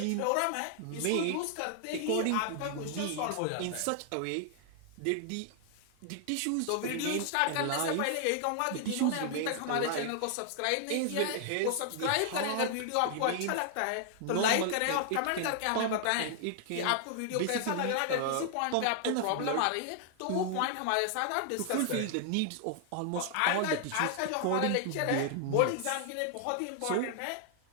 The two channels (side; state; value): both; different; correlation 0.00